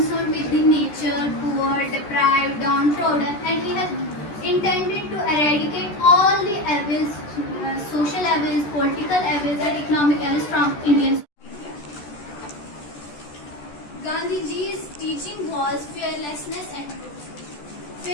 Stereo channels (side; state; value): right; late; 14 ms